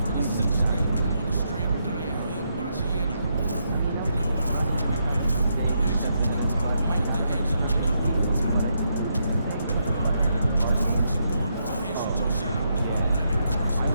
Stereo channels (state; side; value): inverted; both; correlation -0.79